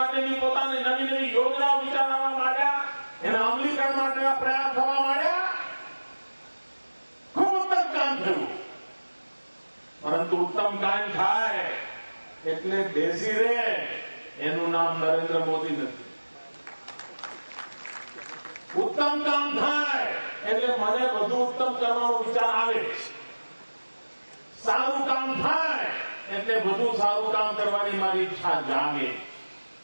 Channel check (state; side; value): inverted; both; correlation -1.00